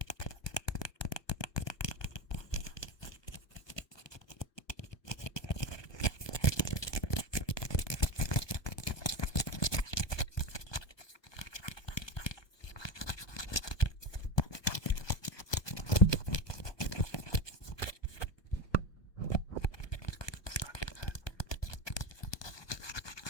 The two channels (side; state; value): right; late; 1.2 ms